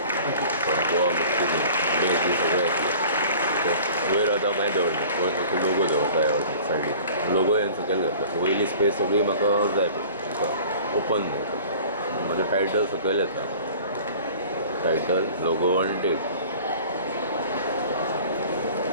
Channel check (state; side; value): inverted; both; correlation -0.45